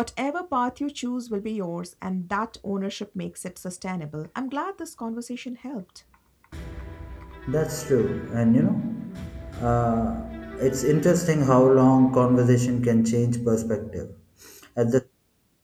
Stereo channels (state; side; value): identical; both; correlation 1.00